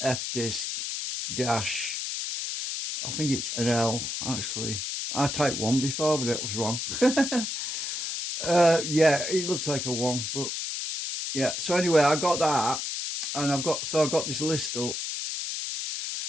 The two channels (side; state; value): left; noise; hiss, 3 dB below the sound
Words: fdisk dash. I think it's an L actually. I typed one before, but it was wrong. Yeah, it looks like a one, but yeah. So anyway, I got that, and I've got this list up.